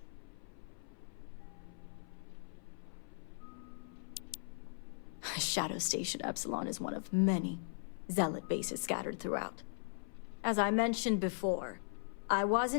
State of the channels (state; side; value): silent; right; 52 dB below the other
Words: Shadow Station Epsilon is one of many Zealot bases scattered throughout. As I mentioned before, I